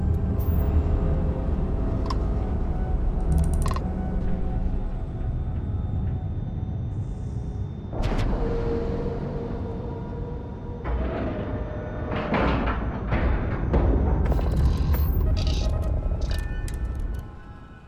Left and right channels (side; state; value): both; identical; correlation 1.00